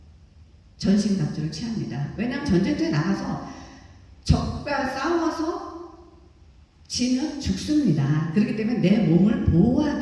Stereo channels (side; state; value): both; identical; correlation 1.00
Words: 전신갑주를 취합니다. 왜냐하면 전쟁터에 나가서 적과 싸워서 지면 죽습니다. 그렇기 때문에 내 몸을